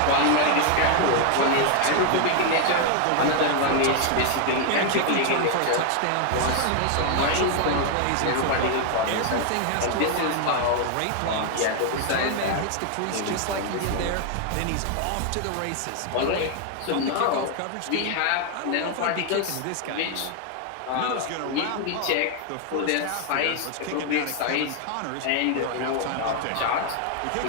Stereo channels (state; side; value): different; both; correlation 0.00